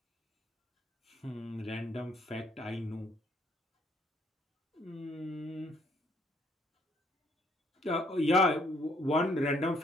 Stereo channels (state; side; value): normal; both; correlation 0.66